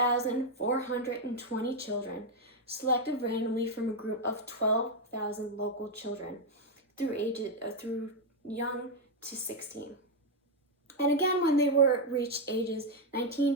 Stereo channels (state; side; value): normal; both; correlation 0.02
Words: children, selected randomly from a group of 12,000 local children through young to 16. And again, when they were reached ages